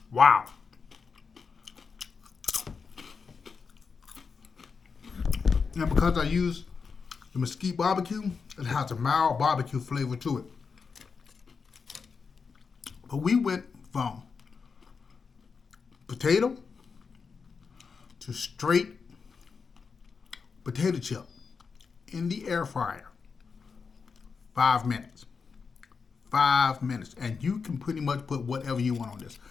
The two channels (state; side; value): quieter; right; 5.4 dB